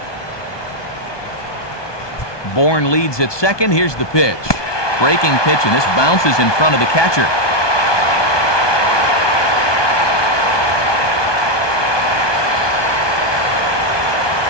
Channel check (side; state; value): right; late; 1.2 ms